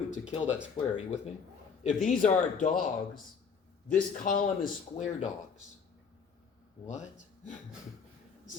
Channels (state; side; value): quieter; right; 6.0 dB